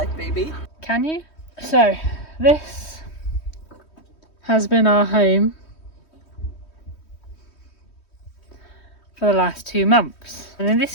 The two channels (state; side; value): late; right; 3.1 ms